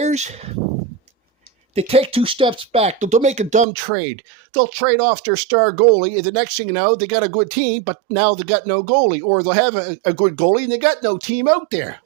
they take two steps back. They'll make a dumb trade. They'll trade off their star goalie, and the next thing you know, they got a good team, but now they got no goalie. Or they'll have a good goalie, and they got no team out there.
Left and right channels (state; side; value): drops out; left; at 3.7 s